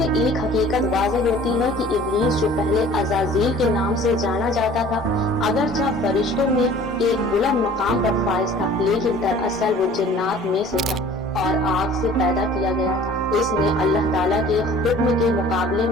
ایک حقیقت واضح ہوتی ہے کہ ابلیس جو پہلے عزازیل کے نام سے جانا جاتا تھا اگرچہ فرشتوں میں ایک بلند مقام پر فائز تھا، لیکن دراصل وہ جنات میں سے تھا اور آگ سے پیدا کیا گیا تھا۔ اس نے اللہ تعالیٰ کے حکم کے مقابلے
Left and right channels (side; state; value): both; normal; correlation 0.48